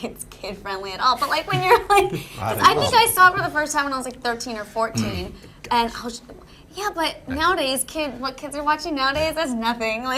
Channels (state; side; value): identical; both; correlation 1.00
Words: it's kid-friendly at all, but like when you're like, 'cause I think I saw it for the first time when I was like 13 or 14, and I was, but nowadays, what kids are watching nowadays, that's nothing.